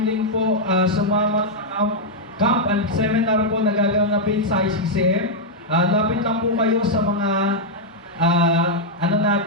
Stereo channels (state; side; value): normal; both; correlation -0.03